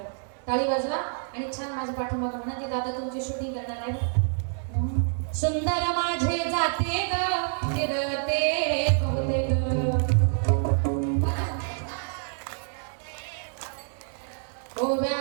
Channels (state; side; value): silent; left; 60 dB below the other